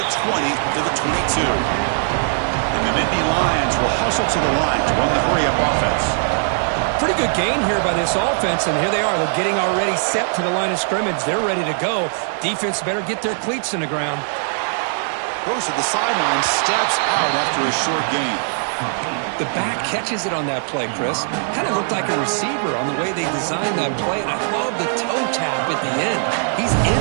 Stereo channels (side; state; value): left; silent; digital silence